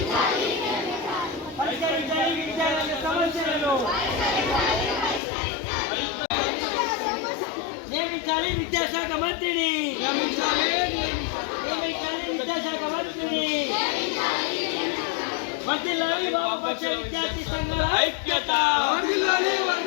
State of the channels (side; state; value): right; drops out; at 5.2 s